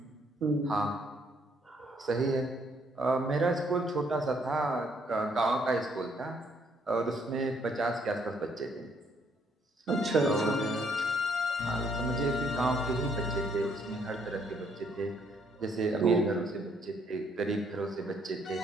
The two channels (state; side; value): normal; both; correlation 0.69